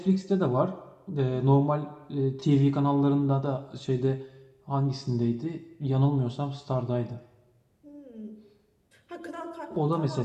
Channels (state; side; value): identical; both; correlation 1.00